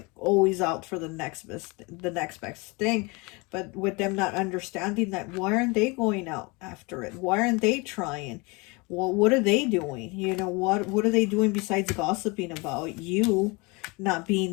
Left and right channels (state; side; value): quieter; right; 27.5 dB